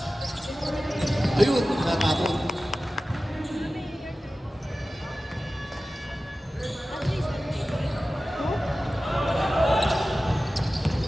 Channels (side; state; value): both; normal; correlation 0.95